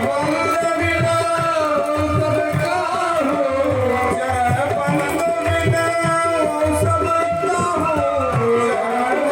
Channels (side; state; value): both; identical; correlation 1.00